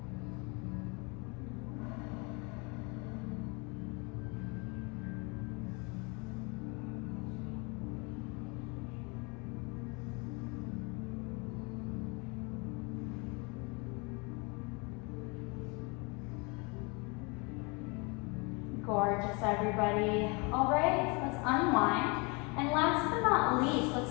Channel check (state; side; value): quieter; right; 30.0 dB